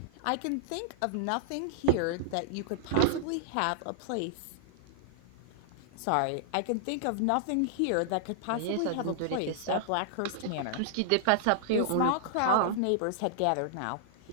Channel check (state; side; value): different; both; correlation -0.01